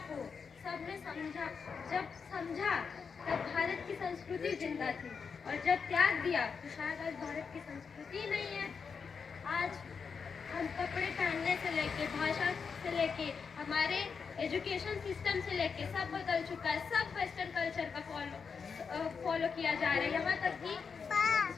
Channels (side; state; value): right; quieter; 5.8 dB